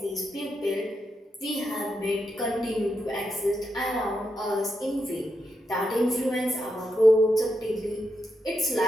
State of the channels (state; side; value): normal; both; correlation 0.84